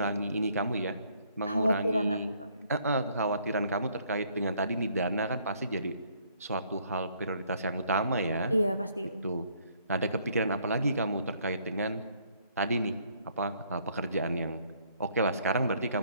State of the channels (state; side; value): inverted; both; correlation -0.65